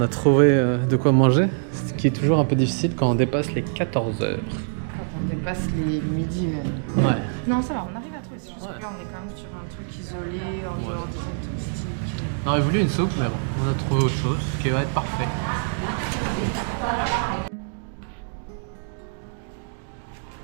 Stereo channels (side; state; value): left; silent; digital silence